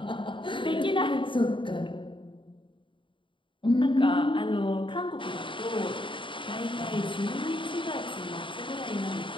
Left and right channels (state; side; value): late; right; 0.24 ms